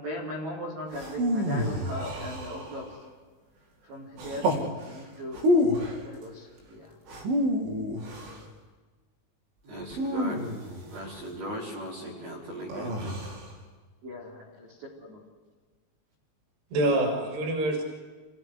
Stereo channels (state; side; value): late; left; 19 ms